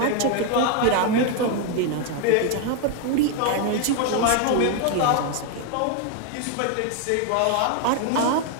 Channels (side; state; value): both; different; correlation 0.01